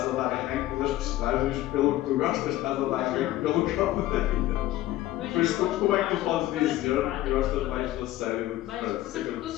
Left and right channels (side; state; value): right; quieter; 15.1 dB